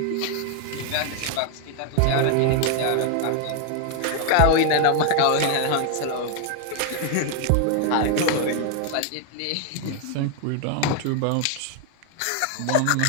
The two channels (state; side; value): different; both; correlation 0.00